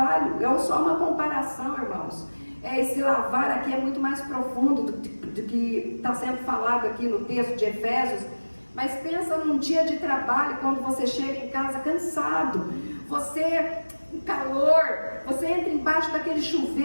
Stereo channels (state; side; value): inverted; both; correlation -1.00